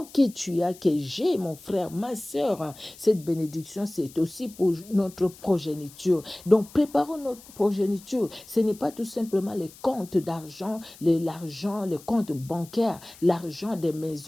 que tu as, que j'ai, mon frère, ma soeur, cette bénédiction, c'est aussi pour notre progéniture. Donc, préparons notre progéniture. Ce n'est pas tout simplement les comptes d'argent, l'argent, les comptes bancaires, l'argent des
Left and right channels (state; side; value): noise; left; hiss, 21 dB below the sound